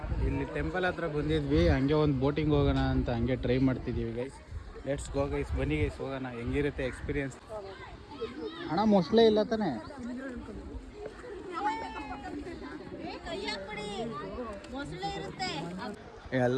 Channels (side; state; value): both; identical; correlation 1.00